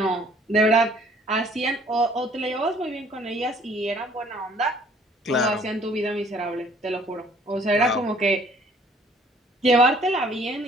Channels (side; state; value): both; normal; correlation 0.58